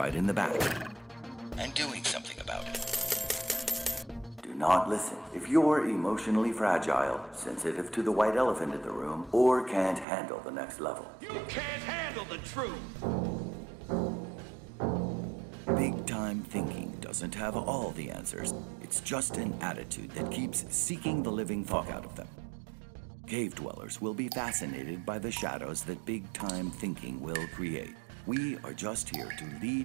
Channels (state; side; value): drops out; left; at 10.1 s